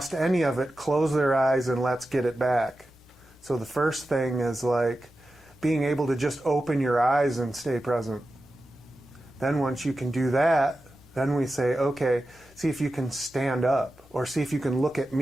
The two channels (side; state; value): both; normal; correlation 0.92